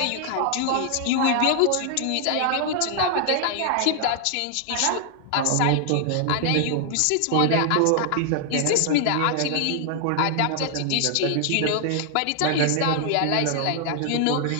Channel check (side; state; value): both; different; correlation 0.00